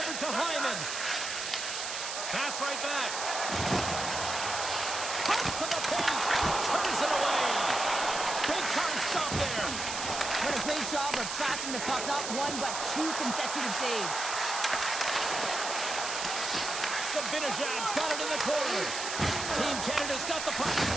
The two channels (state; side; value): noise; right; hiss, 4 dB below the sound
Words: to Hyman. Pass right back. Cuts to the paint. Turns it away. Big time stop there. What a great job of tracking the puck. Not one, but two consecutive saves. Sabinajad's got it in the corner. Team Canada's got the puck.